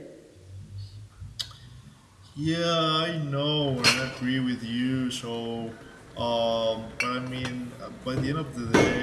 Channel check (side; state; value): both; identical; correlation 1.00